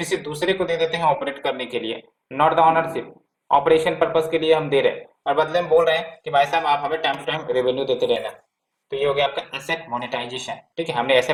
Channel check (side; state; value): both; identical; correlation 1.00